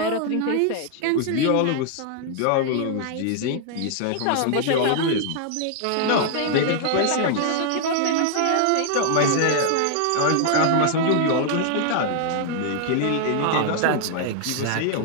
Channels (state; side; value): different; both; correlation 0.00